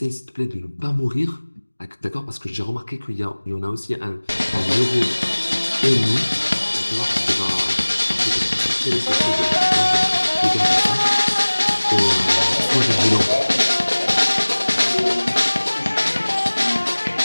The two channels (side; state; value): both; inverted; correlation -1.00